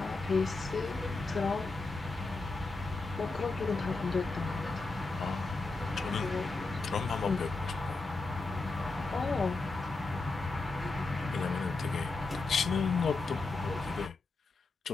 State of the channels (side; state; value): right; quieter; 3.6 dB